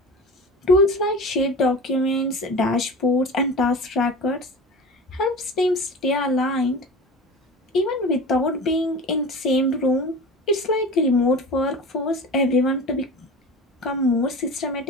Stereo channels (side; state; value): both; normal; correlation 0.34